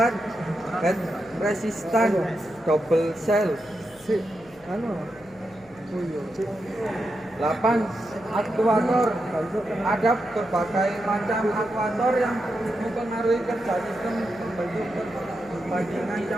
head resistant double cell, 8 aktuator. Ada berbagai macam aktuator yang mempengaruhi kerja sistem pembentuk perbandingan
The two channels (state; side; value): noise; left; hum, 27 dB below the sound